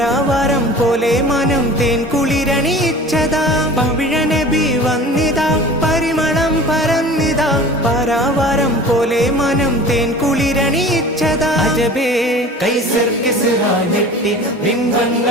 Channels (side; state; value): both; normal; correlation 0.40